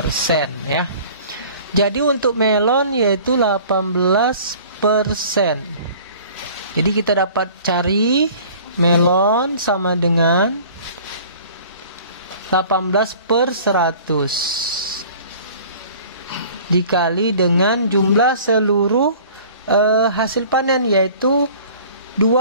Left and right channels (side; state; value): both; inverted; correlation -0.47